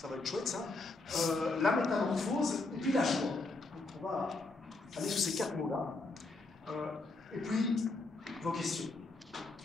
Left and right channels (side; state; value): right; quieter; 3.3 dB